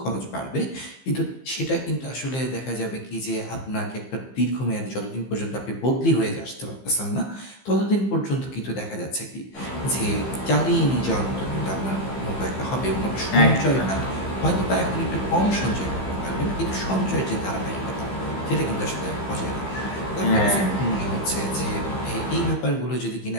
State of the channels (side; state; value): right; late; 15 ms